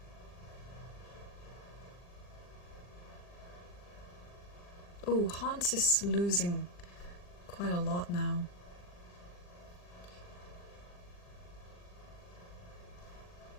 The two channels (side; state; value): right; late; 40 ms